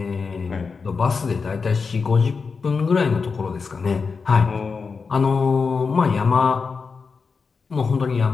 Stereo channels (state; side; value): quieter; right; 5.0 dB